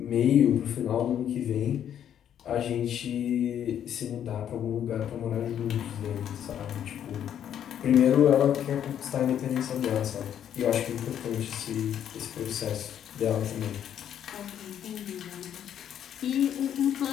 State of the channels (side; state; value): right; quieter; 9.8 dB